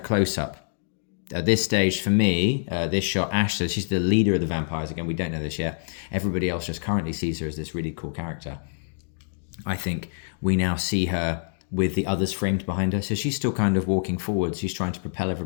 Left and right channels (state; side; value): silent; right; digital silence